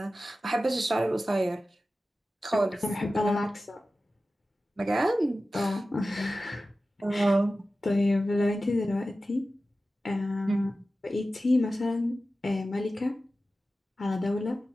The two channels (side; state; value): both; normal; correlation 0.94